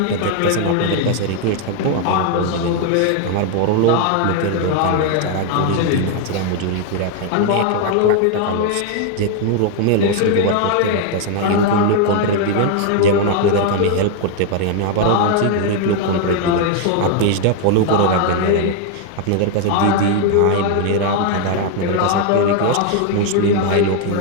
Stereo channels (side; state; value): both; different; correlation 0.00